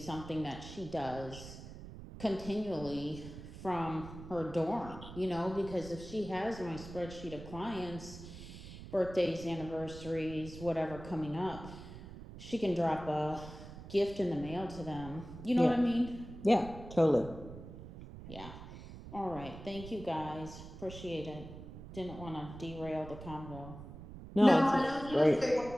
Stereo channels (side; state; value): right; noise; rumble, 13 dB below the sound